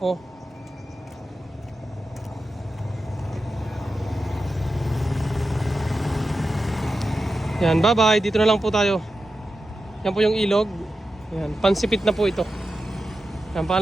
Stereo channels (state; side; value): normal; both; correlation 0.91